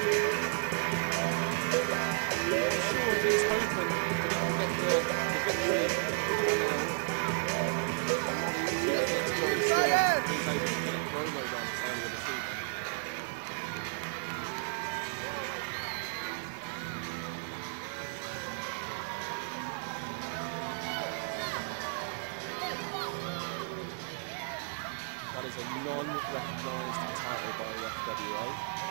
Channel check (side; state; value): left; silent; digital silence